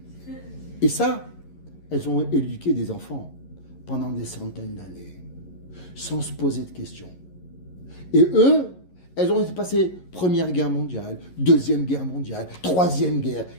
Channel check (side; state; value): right; late; 11 ms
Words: Et ça, elles ont éduqué des enfants pendant des centaines d'années, sans se poser de questions. Et eux, elles ont passé Première Guerre mondiale, Deuxième Guerre mondiale, Troisième Guerre,